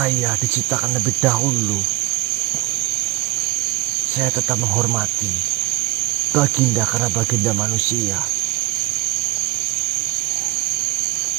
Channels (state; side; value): quieter; left; 18.7 dB